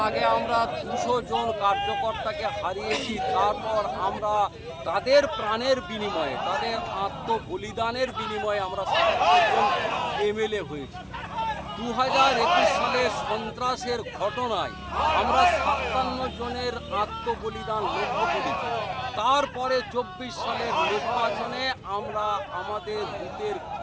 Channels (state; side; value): identical; both; correlation 1.00